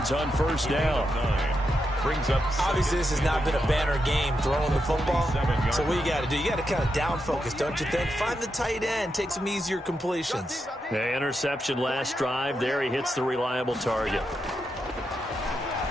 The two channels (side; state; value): both; normal; correlation 0.85